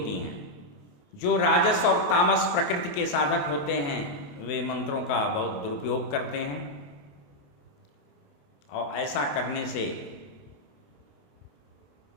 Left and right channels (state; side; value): late; right; 28 ms